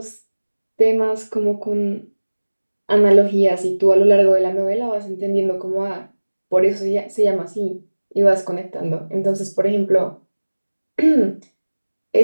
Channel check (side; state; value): both; inverted; correlation -1.00